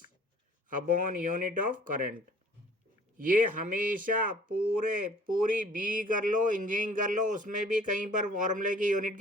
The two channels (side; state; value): both; normal; correlation 0.53